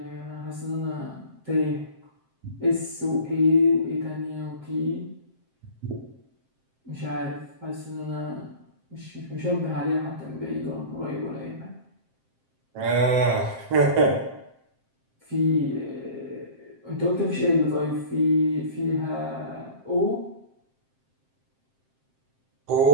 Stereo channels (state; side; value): late; left; 7.6 ms